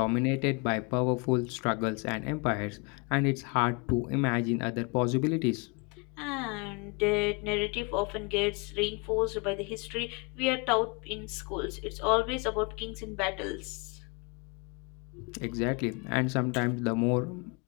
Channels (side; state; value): right; quieter; 31.5 dB